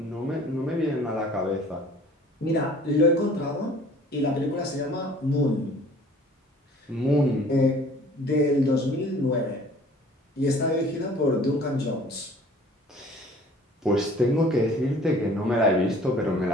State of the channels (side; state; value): both; normal; correlation 0.51